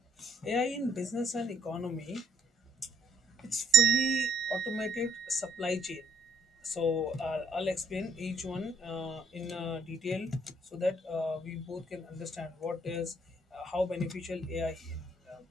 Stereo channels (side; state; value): both; normal; correlation 0.66